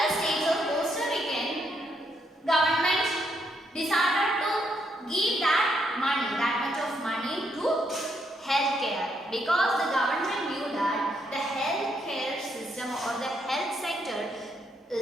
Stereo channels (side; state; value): both; normal; correlation 0.76